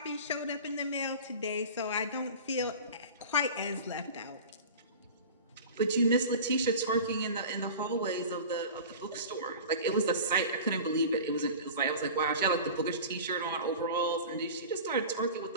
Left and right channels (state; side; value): inverted; both; correlation -0.36